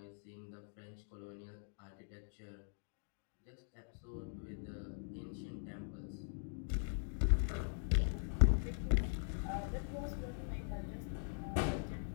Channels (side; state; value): right; silent; digital silence